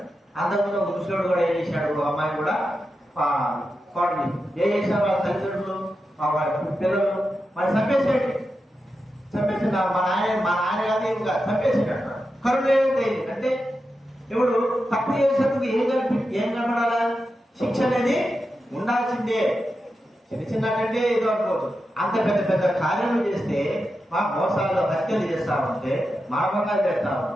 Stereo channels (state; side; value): normal; both; correlation 0.89